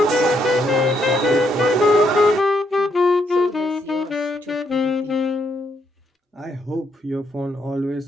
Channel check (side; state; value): both; normal; correlation 0.75